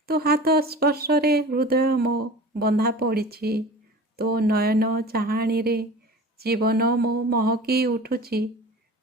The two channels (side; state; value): both; normal; correlation 0.37